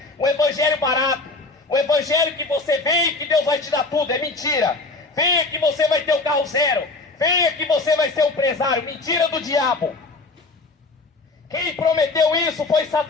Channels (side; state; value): right; quieter; 3.4 dB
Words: um evangelho barato, um evangelho que você vem e que Deus vai te dar tudo. É mentira. Venha que você vai ter o carro zero, venha que você vai ser um empresário. Mentira do diabo. Quem prometeu isso foi